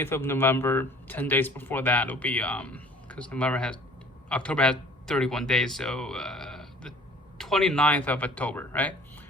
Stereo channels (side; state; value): both; normal; correlation 0.51